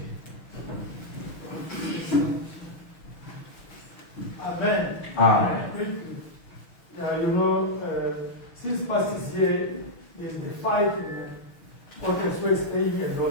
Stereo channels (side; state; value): right; late; 6.3 ms